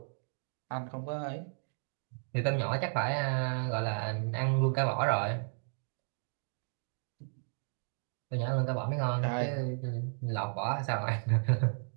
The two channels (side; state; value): left; silent; digital silence